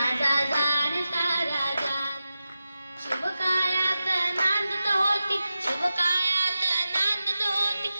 जाणता राजा। शिवकायात नांदत होती, शिवकायात नांदत होती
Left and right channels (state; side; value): inverted; both; correlation -0.92